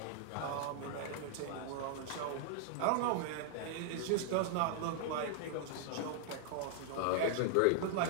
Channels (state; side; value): different; both; correlation 0.00